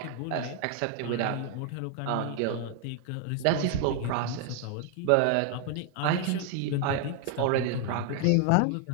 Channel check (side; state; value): both; different; correlation 0.00